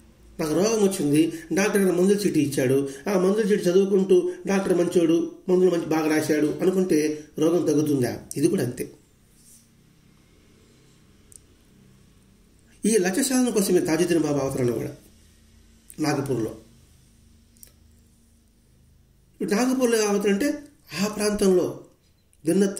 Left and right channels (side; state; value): both; identical; correlation 1.00